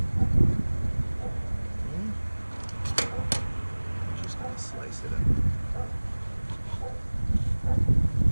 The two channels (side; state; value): both; inverted; correlation -1.00